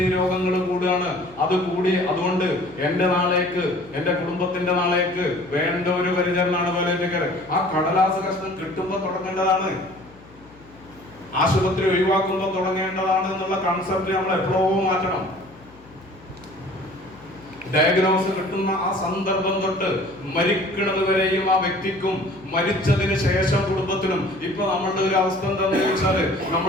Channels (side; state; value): left; noise; hum, 25 dB below the sound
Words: രോഗങ്ങൾ കൂടുകയാണ്. അത് കൂടി അതുകൊണ്ട് എന്റെ നാളേക്ക്, എന്റെ കുടുംബത്തിന്റെ നാളേക്ക് വേണ്ട ഒരു പരിചരണമാണ് പാലിയേറ്റീവ് കെയർ. ആ കടലാസ് കഷ്ണം കിട്ടുമ്പോ തുടങ്ങേണ്ടതാണ്, ആശുപത്രി ഒഴിവാക്കുമ്പോൾ തുടങ്ങേണ്ടതാണ് എന്നുള്ള കൺസെപ്റ്റ് നമ്മൾ എപ്പോഴും മാറ്റണം. ഡയഗ്നോസ് കിട്ടുന്ന ആ സന്ദർഭം തൊട്ട് മരിക്കുന്നത് വരെയും ആ വ്യക്തിക്കും മരിച്ചതിന് ശേഷം കുടുംബത്തിനും. ഇപ്പൊ നമ്മളുടെ ഒരു അവസ്ഥ എന്താണെന്ന് ചോദിച്ചാല്,